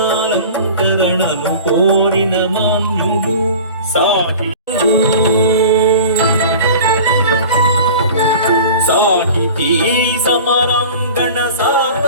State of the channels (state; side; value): inverted; both; correlation -0.39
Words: కోరిన మాన్యుడు సాహితీ సమరాంగణ